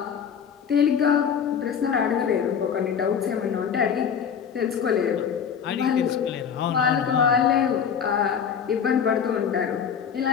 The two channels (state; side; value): quieter; right; 7.4 dB